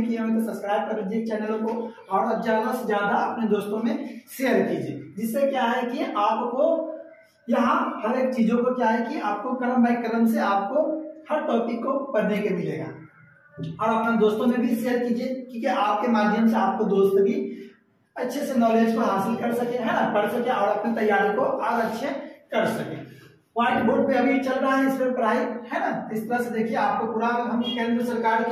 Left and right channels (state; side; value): identical; both; correlation 1.00